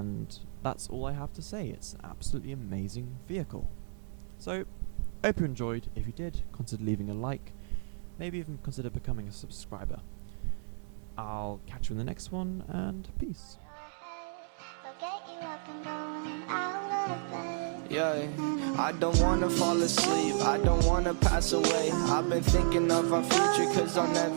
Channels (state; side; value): silent; left; digital silence